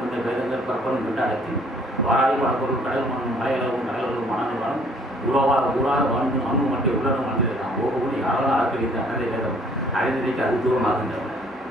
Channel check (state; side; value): normal; both; correlation 0.59